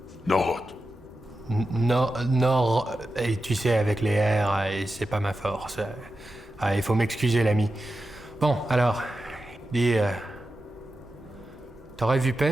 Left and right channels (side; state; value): both; normal; correlation 0.91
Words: Note. Non, et tu sais, avec les R, c'est pas ma force. Il faut m'excuser, l'ami. Bon, alors, dis, t'aurais vu